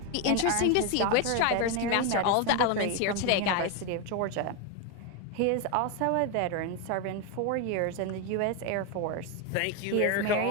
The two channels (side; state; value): both; different; correlation 0.01